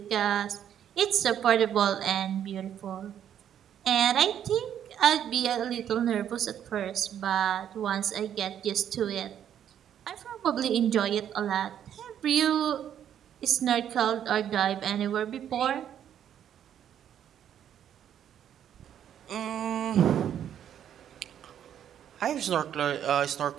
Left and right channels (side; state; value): left; quieter; 9.8 dB